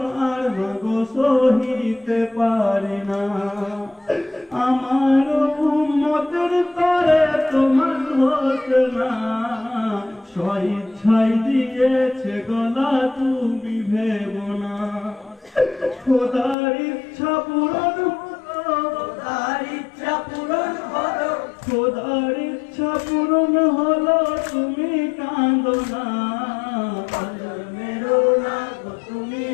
আর মাগো সহিতে পারি না আমার উম্মতের তরে তোমার হতো না স্বইচ্ছাই দিয়েছে গলা তুমি ভেবো না খোদার ইচ্ছা পূরণ হলো তার ইচ্ছা পূরণ হলো খোদার ইচ্ছা পূরণ হলো তুমি কাঁদো না কঞ্জর মেরো না গো তুমি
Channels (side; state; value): right; drops out; at 16.6 s